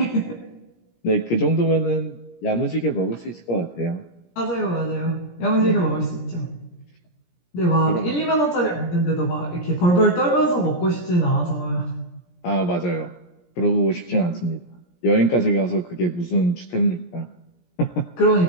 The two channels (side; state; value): right; late; 17 ms